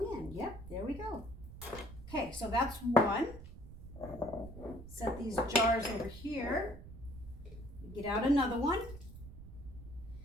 in. Yep, there we go. Okay, so that's one. Set these jars over here. Get out another one.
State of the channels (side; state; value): right; noise; rumble, 14 dB below the sound